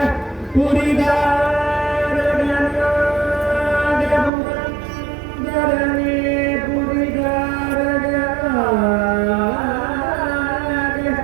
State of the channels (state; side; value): drops out; left; at 4.3 s